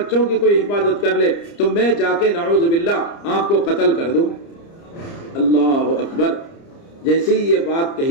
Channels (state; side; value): late; right; 30 ms